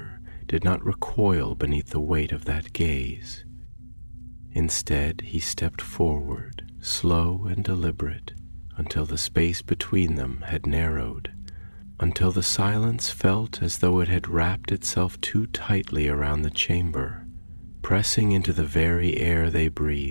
did not recoil beneath the weight of that gaze. Instead, he stepped forward, slow and deliberate, until the space between them had narrowed, until the silence felt as though it had wrapped itself too tightly around the chamber, pressing into the very air they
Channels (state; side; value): inverted; both; correlation -1.00